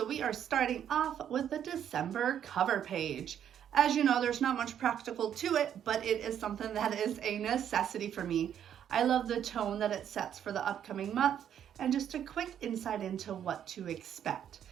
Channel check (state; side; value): quieter; left; 9.5 dB